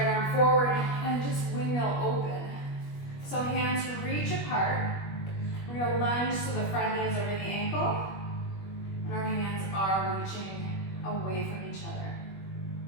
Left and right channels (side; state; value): right; late; 21 ms